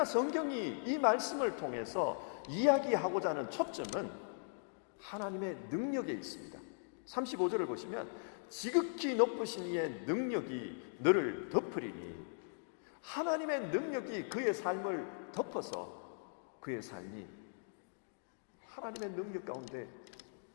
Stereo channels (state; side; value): silent; right; digital silence